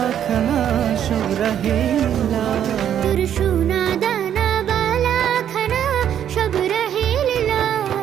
খানা সব রহিলা, তোর সোনা দানা বালা খানা সব রহে লীলা।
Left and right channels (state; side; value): quieter; left; 9.8 dB